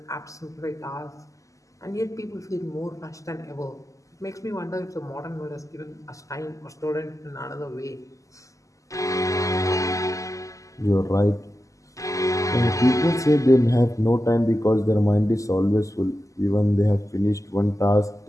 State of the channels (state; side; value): late; right; 0.16 ms